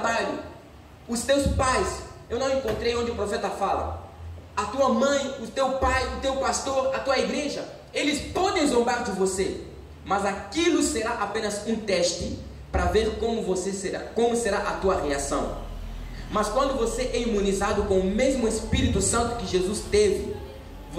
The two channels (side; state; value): both; identical; correlation 1.00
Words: Os teus pais, eu não encontrei onde o profeta fala, a tua mãe, o teu pai, o teu pastor, a tua igreja, eles podem zombar de você, mas aquilo será apenas um teste para ver como será a tua reação. Mas quando você é imunizado com o mesmo Espírito Santo que Jesus teve,